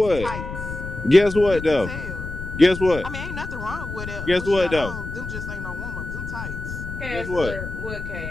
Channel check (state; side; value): noise; left; rumble, 8 dB below the sound